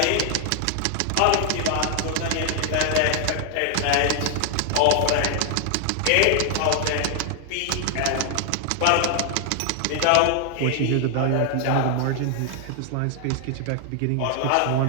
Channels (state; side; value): different; both; correlation 0.00